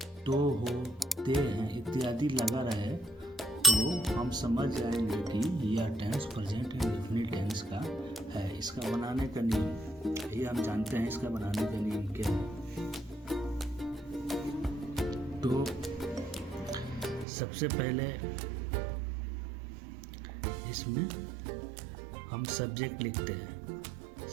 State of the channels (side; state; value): left; drops out; at 17.2 s